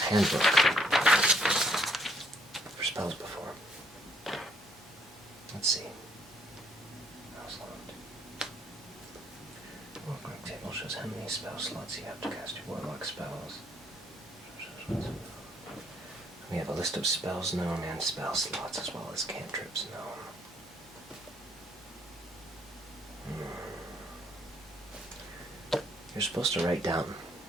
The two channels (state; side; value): normal; both; correlation 0.67